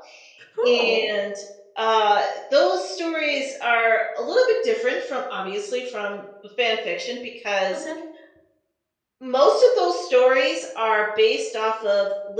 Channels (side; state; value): both; identical; correlation 1.00